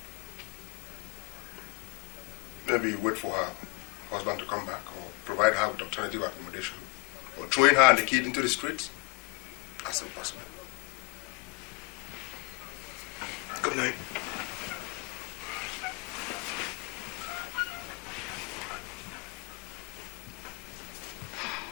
Maybe wait for her husband to come back or provide her with alternative accommodation. But throwing her and the kid into the streets? That's impossible. Good night.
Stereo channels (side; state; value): right; quieter; 29.5 dB